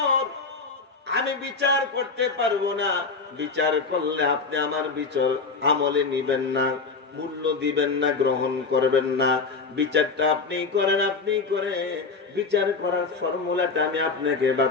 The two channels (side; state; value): right; quieter; 4.4 dB